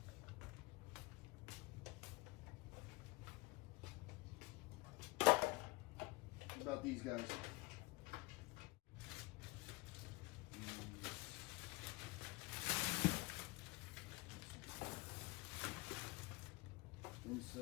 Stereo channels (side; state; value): right; quieter; 23.6 dB